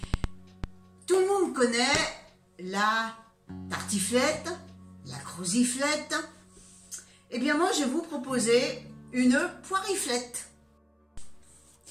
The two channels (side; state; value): both; identical; correlation 1.00